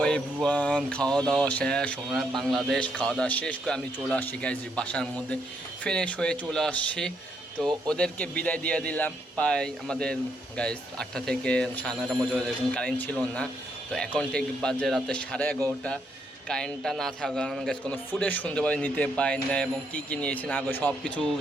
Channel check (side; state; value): both; normal; correlation 0.75